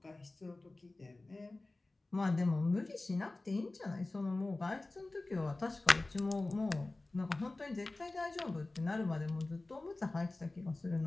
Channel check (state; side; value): quieter; right; 3.0 dB